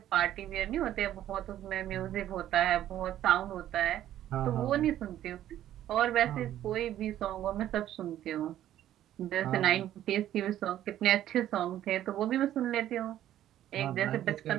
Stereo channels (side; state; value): left; quieter; 12.2 dB